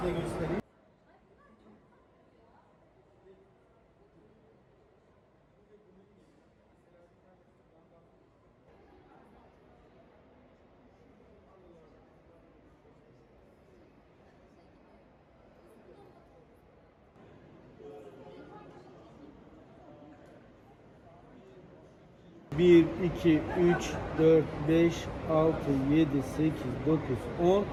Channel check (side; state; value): both; identical; correlation 1.00